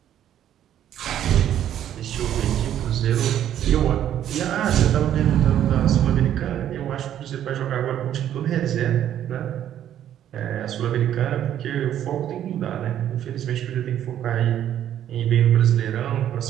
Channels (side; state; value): left; quieter; 10.9 dB